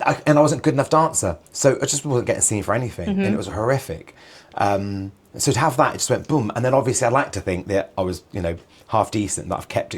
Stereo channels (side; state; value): both; identical; correlation 1.00